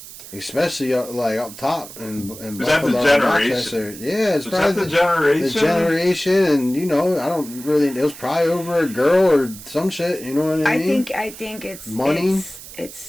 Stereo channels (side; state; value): right; noise; hiss, 15 dB below the sound